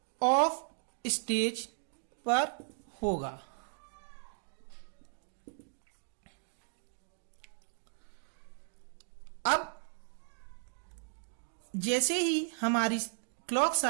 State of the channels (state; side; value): silent; left; digital silence